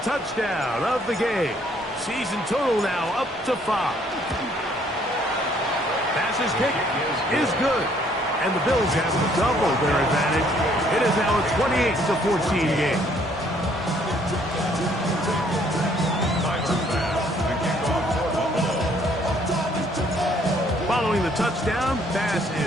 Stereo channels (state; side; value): normal; both; correlation 0.64